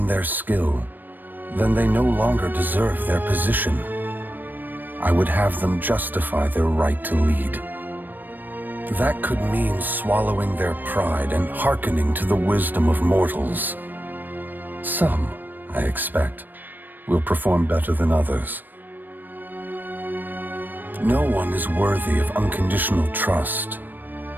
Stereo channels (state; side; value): late; left; 0.090 ms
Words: their skill, then they no longer deserve their position. I would have them justify their right to lead. That could mean swallowing their pride and hearkening to the wisdom of mortals. Some, I expect, will perform better than others. No one is worthy of unconditional trust.